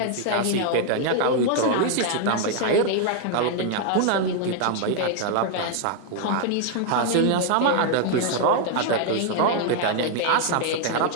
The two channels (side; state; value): both; different; correlation 0.00